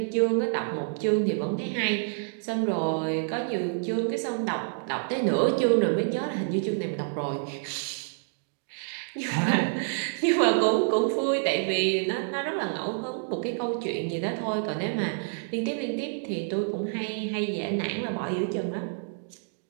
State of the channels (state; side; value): silent; left; digital silence